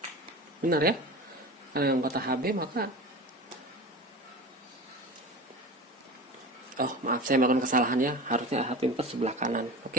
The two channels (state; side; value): normal; both; correlation 0.32